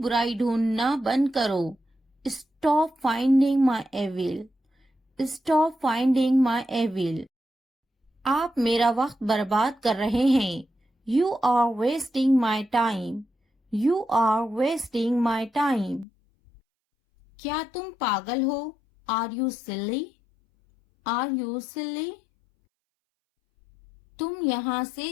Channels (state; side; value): drops out; right; at 16.1 s